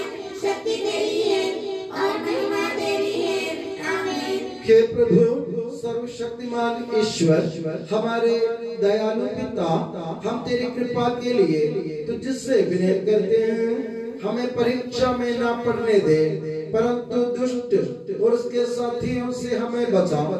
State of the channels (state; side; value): identical; both; correlation 1.00